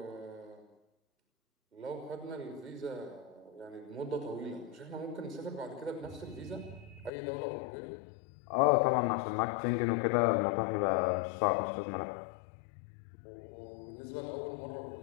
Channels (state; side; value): drops out; right; at 7.1 s